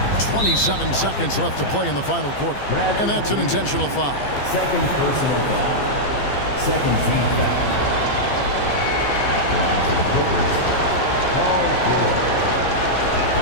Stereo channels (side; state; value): right; late; 15 ms